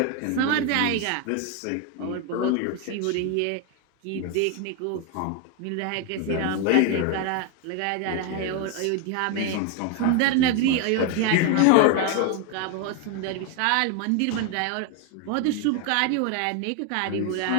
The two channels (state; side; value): different; both; correlation 0.01